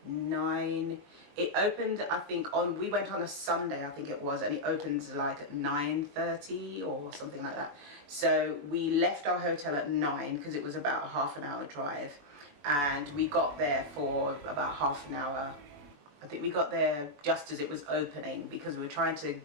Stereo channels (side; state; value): left; late; 21 ms